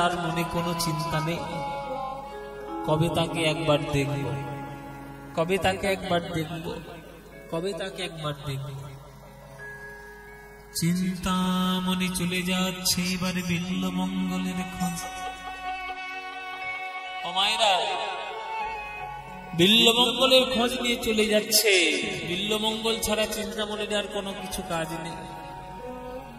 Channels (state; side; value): identical; both; correlation 1.00